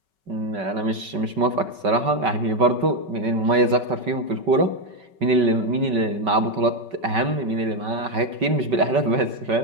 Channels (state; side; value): late; left; 5.3 ms